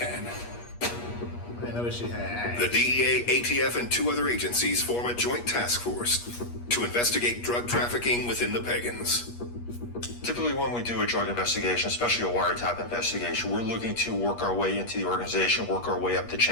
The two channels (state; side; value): late; right; 8.4 ms